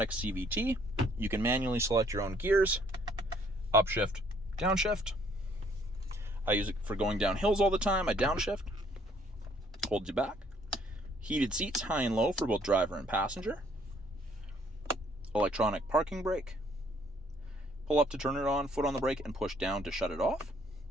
CVT. You can manually select your own gears, upshift, downshift. I use it for going down hills all the time. I downshift, holds you back. Heated seats, high and low for both driver and passenger. Electronic parking brake. Pull up to turn it on, foot on the brake, and push down to shut it off.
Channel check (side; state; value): both; normal; correlation 0.63